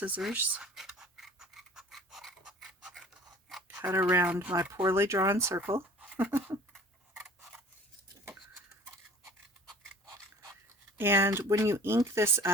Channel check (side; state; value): both; normal; correlation 0.47